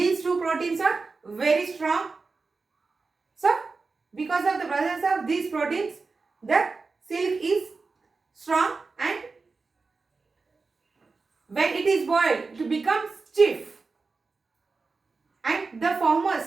two proteins are very strong. So, because of the presence of these proteins, the silk is strong, and when it is boiled, it becomes stiff, and the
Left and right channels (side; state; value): left; quieter; 4.2 dB